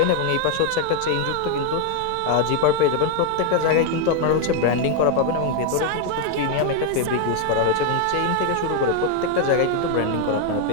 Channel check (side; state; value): both; different; correlation 0.01